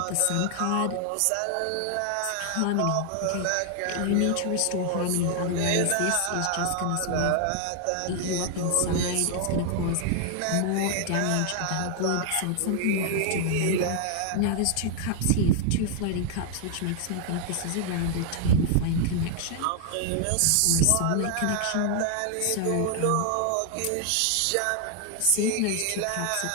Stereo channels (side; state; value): both; different; correlation 0.00